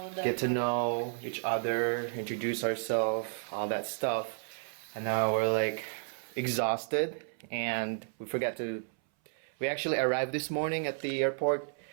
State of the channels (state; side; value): silent; left; 56 dB below the other